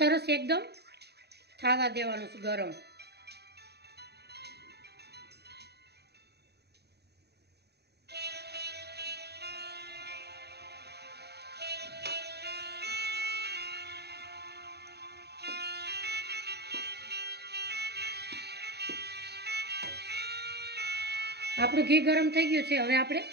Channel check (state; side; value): late; left; 0.48 ms